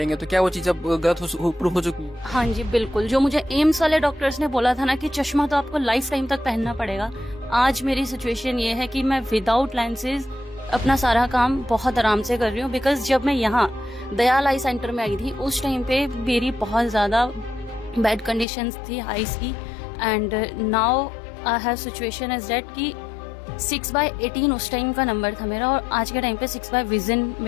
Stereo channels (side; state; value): right; drops out; at 18.4 s